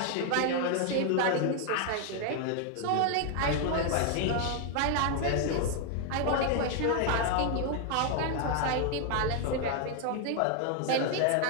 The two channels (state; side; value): different; both; correlation 0.00